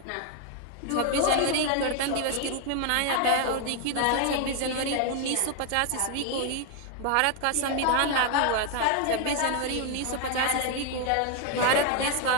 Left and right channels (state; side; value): different; both; correlation 0.01